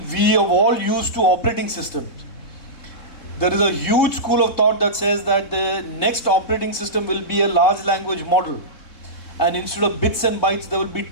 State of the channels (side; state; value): right; late; 3.7 ms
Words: We have all used to operating systems. There is a huge school of thought that says that the next operating system will be a large language model. And instead of bits and bytes, there will be